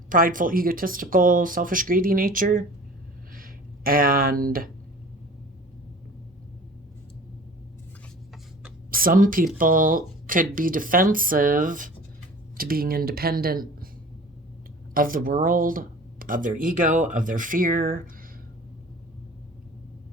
prideful, egotistical, selfish, greedy nature. And some people could be defensive to being independent of the world, of their ego, of their fear.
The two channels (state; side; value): normal; both; correlation 0.43